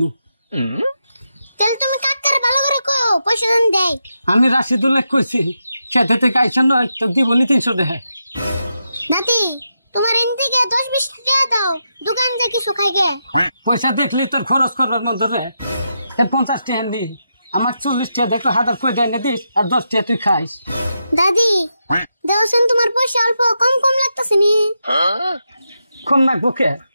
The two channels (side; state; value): both; inverted; correlation -0.85